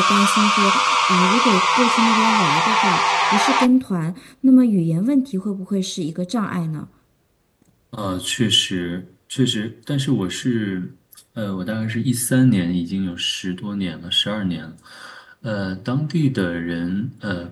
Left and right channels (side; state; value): both; identical; correlation 1.00